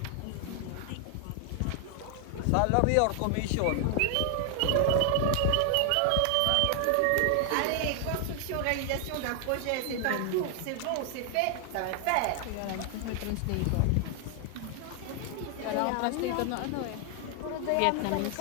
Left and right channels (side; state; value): both; different; correlation 0.00